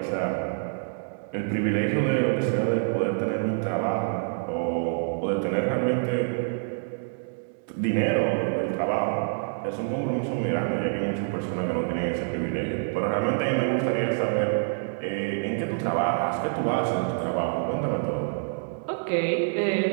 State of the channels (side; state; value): left; silent; digital silence